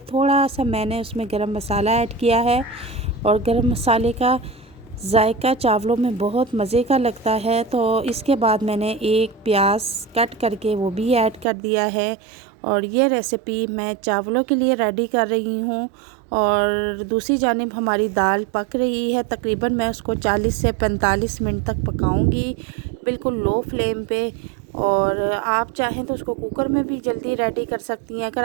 थोड़ा सा मैंने उसमें गरम मसाला ऐड किया है और गरम मसाले का जायका चावलों में बहुत मज़े का लगता है। तो इसके बाद मैंने 1 प्याज कट करके वो भी ऐड कर दिया है और ये रेसिपी मैं चावलों के लिए रेडी कर रही हूँ। और दूसरी जानिब हमारी दाल पक रही है। तकरीबन मैं उसको 40 से 45 मिनट तक पकाऊंगी बिल्कुल लो फ्लेम पे। और आप चाहें तो उसको कुकर में भी जल्दी रेडी कर सकती हैं। अगर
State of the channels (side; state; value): left; drops out; at 11.5 s